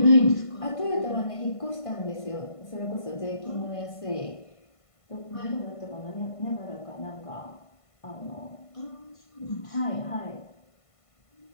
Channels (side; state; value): right; late; 1.5 ms